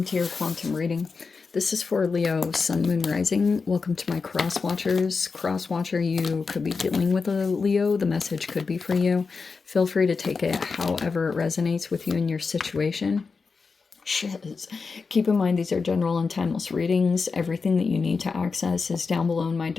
to your quantum reading. This is for Leo, Sun, Moon, Rising. Welcome to my cross watchers. Cross watcher, you could be dealing with a Leo. The message could be for you. Feel free to take it however it resonates with you in your situation. Shiz. Keep in mind these are general and timeless readings. Everything that you need to access is down below in my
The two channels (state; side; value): quieter; right; 4.7 dB